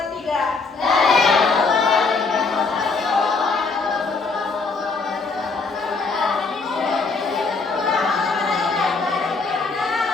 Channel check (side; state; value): right; quieter; 4.2 dB